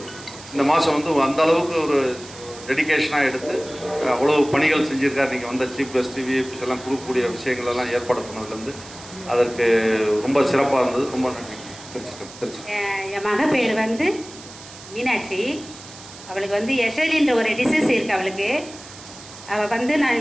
இந்த மாதம் வந்து அந்த அளவுக்கு ஒரு டெடிக்கேஷனாக எடுத்து அவ்வளோ பணிகள் செஞ்சுருக்காரு. நீங்கள் வந்த சீஃப் கெஸ்ட் விஐபிஸ் எல்லாம் கொடுக்கக்கூடிய விஷயங்களெல்லாம் ஏற்பாடு பண்ணதுலேருந்து அதற்கு ரொம்ப சிறப்பாக இருந்தது. ரொம்ப நன்றி. திருச்சி. என் மக பேர் வந்து மீனாட்சி. அவளுக்கு வந்து எஸ்எல்இன்ற ஒரு டிசீஸ் இருக்குது அவளுக்கு. அவள் வந்து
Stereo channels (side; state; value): right; noise; hiss, 17 dB below the sound